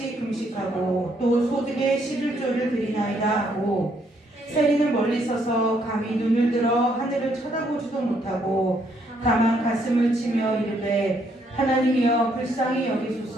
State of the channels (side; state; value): both; normal; correlation 0.71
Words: 금식하고 또 소득의 11조를 드리나이다 하고 세리는 멀리 서서 감히 눈을 들어 하늘을 쳐다보지도 못하고 다만 가슴을 치며 이르되 하나님이여 불쌍히